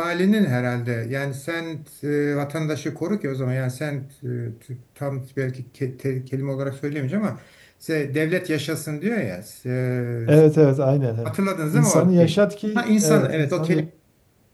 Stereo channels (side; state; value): both; identical; correlation 1.00